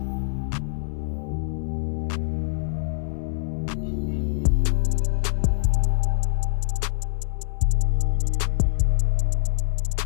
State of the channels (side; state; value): right; silent; 59 dB below the other